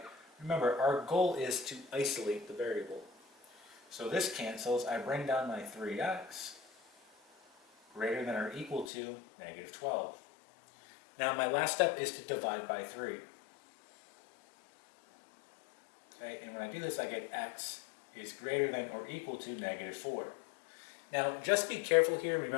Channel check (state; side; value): drops out; right; at 8.8 s